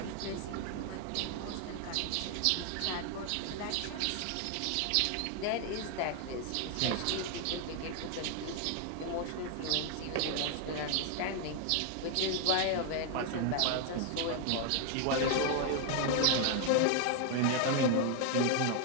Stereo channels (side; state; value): both; different; correlation 0.00